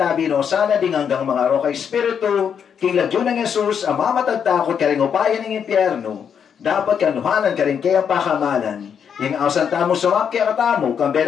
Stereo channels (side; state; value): right; quieter; 7.6 dB